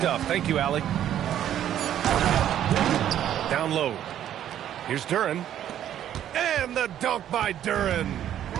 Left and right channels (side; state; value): left; quieter; 10.9 dB